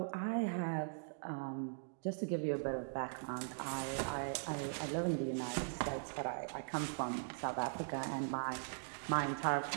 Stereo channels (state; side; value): silent; left; digital silence